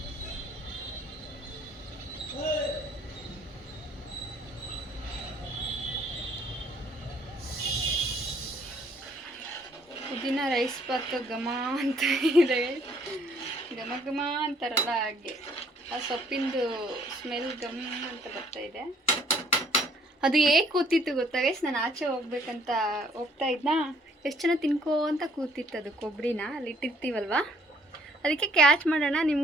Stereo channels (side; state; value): both; normal; correlation 0.62